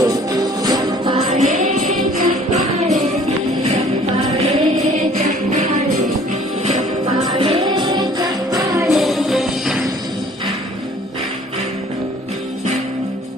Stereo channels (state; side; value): normal; both; correlation 0.54